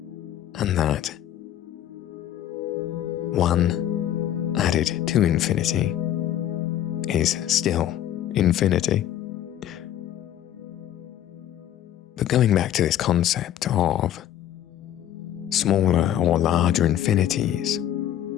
And that one added to infinity is still infinity. But going back to this concept of smaller or larger infinities,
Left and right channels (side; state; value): right; quieter; 11.5 dB